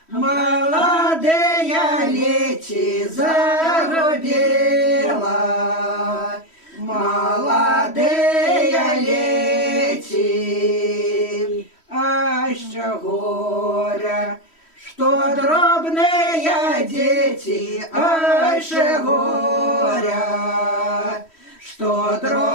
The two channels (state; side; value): late; right; 3.1 ms